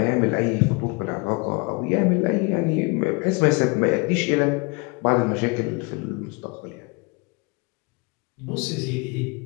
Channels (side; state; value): right; quieter; 30.1 dB